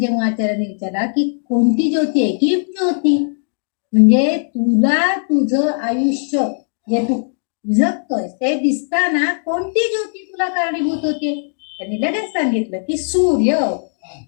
आचार्याने विचारला की कोणती ज्योती आहे, की ज्योती म्हणजे तुला तुझं आयुष्य जे तू जगतोय ते दिसताना कोणती ज्योती तुला कारणीभूत होते? त्यांनी लगेच सांगितलं की सूर्य,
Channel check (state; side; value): silent; right; digital silence